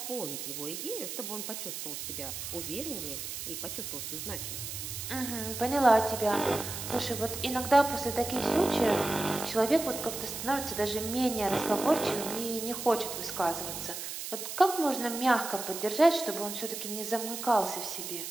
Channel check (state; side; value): noise; right; hiss, 6 dB below the sound